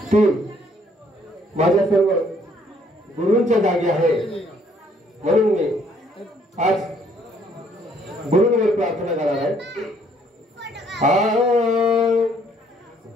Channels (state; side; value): normal; both; correlation 0.65